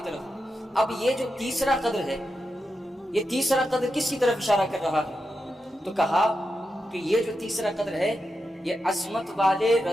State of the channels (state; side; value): normal; both; correlation 0.88